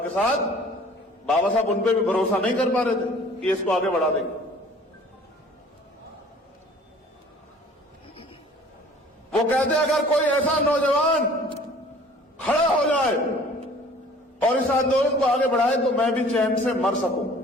के साथ, बाबा साहब उन पे भी भरोसा नहीं कर पा रहे थे कि इसको आगे बढ़ा देंगे। वो कहते अगर कोई ऐसा नौजवान खड़ा हो जाए और इस आंदोलन को आगे बढ़ाए तो मैं भी चैन से मर सकूं।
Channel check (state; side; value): normal; both; correlation 0.51